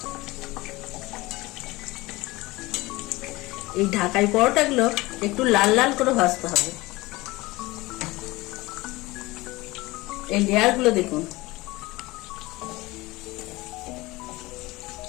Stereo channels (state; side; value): quieter; right; 20.8 dB